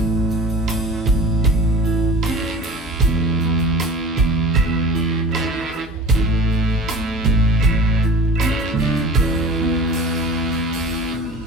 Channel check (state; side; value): normal; both; correlation 0.40